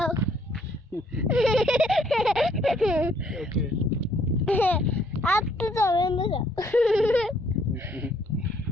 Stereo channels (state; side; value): normal; both; correlation 0.66